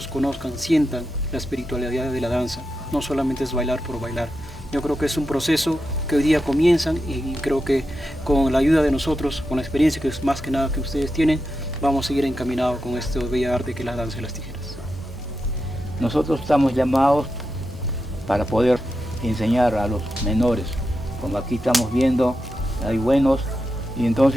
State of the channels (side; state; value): both; normal; correlation 0.88